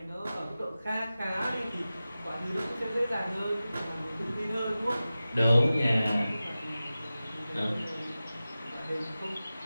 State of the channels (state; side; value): inverted; both; correlation -0.95